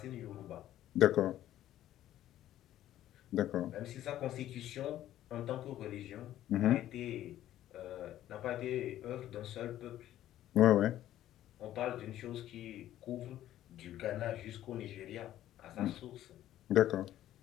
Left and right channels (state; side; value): quieter; right; 12.9 dB